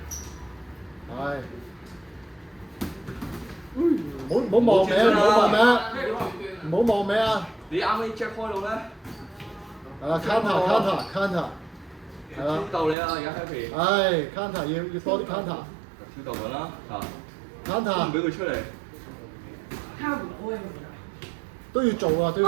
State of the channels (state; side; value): drops out; left; at 13.0 s